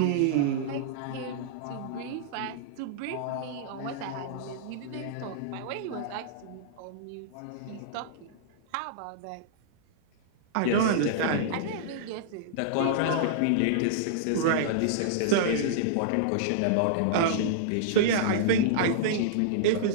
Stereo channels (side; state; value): both; different; correlation -0.02